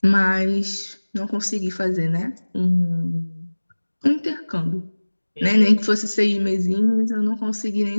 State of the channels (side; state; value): both; inverted; correlation -1.00